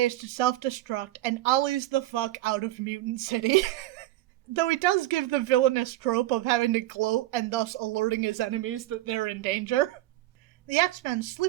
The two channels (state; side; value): quieter; left; 15.9 dB